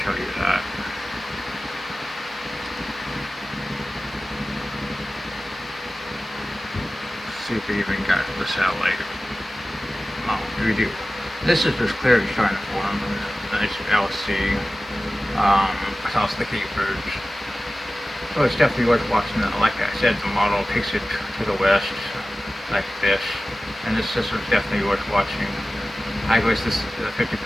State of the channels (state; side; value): normal; both; correlation 0.96